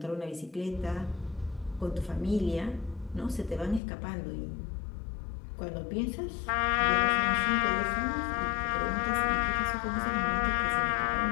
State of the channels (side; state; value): right; drops out; at 3.8 s